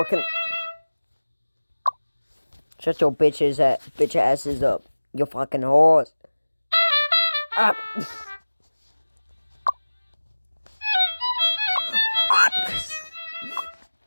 Shut your bitch asses up. You fucking horse. Ah.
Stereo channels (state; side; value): inverted; both; correlation -1.00